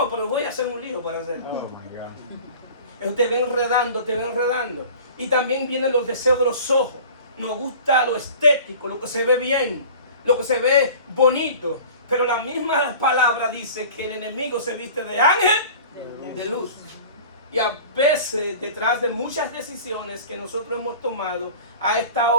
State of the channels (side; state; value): both; inverted; correlation -0.41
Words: pero voy a hacer un lío para hacerlo. Oh my God. Te ven enredando, te ven enredando. Y también vienen los deseos de los ojos. Nos gusta lo estético, lo que se ve bien, lo que se ve bonito. Pero la misma palabra dice que el enemigo se viste de ángel de luz. Y a veces, detrás de muchas decisiones que nosotros hemos tomado, ha